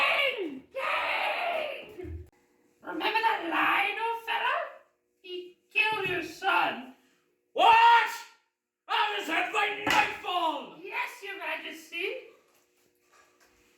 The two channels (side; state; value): both; identical; correlation 1.00